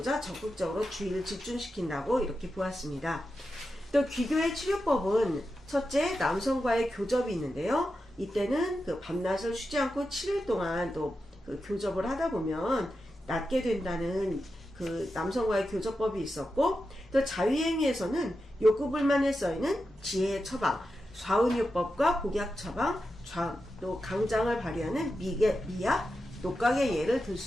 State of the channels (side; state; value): both; normal; correlation 0.90